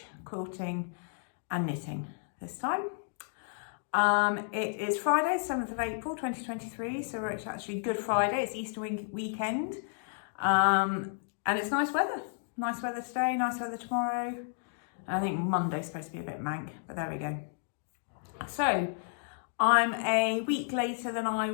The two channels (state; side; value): silent; right; digital silence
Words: quilting and knitting this time. It is Friday, 7th of April 2023, so it's actually Good Friday, it's Easter weekend, and it's nice weather. Nice weather today, nice weather tomorrow. I think Monday's supposed to be a bit mank, but there we go. So, I'm a week later than I